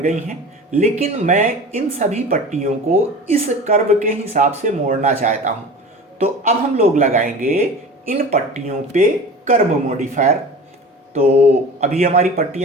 हैं, लेकिन मैं इन सभी पट्टियों को इस कर्व के हिसाब से मोड़ना चाहता हूँ। तो अब हम लोग लगाएंगे इन पट्टियों पे कर्व मॉडिफायर। तो अभी हमारी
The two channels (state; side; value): normal; both; correlation 0.37